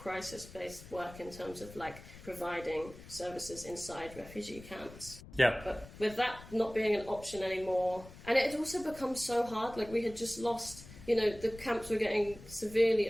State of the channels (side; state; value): left; noise; rumble, 17 dB below the sound